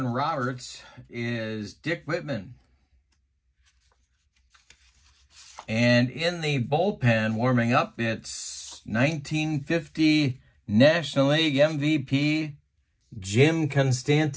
Roberts is Dick Whitman. And in the bullpen, warming up, it's 1950 National League MVP Jim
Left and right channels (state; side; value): identical; both; correlation 1.00